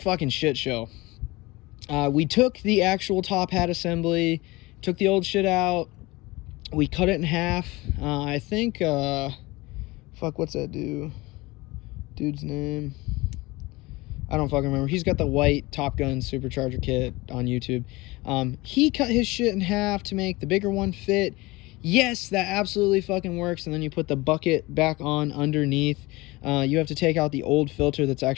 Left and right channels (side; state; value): right; quieter; 22.0 dB